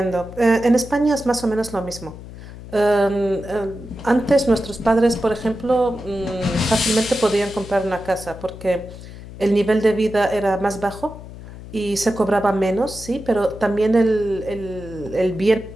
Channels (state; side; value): noise; left; hum, 14 dB below the sound